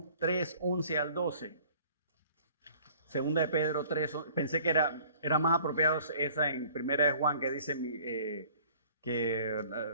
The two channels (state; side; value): inverted; both; correlation -0.52